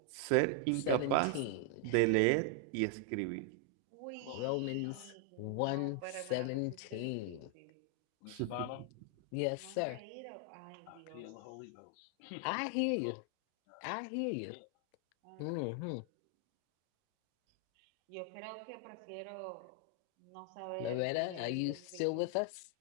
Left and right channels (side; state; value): both; different; correlation 0.00